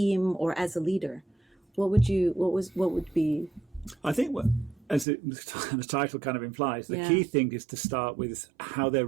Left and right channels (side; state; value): left; drops out; at 5.1 s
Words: or as a leader? What would be? I think as the title kind of implies, the key thing is to start with how they're